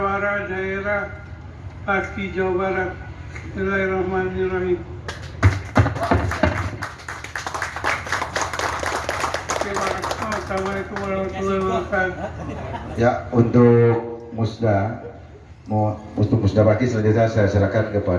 daerah Paski Jawa Barat. Bismillahirrahmanirrahim. Terima kasih. Assalamualaikum warahmatullahi wabarakatuh. Ya, untuk musda bagi selanjutnya saya serahkan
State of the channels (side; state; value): both; identical; correlation 1.00